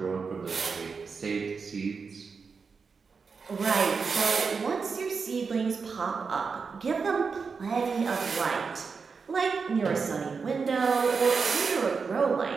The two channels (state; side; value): quieter; left; 5.2 dB